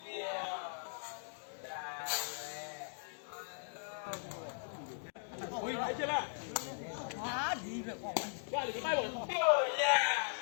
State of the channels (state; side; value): silent; right; digital silence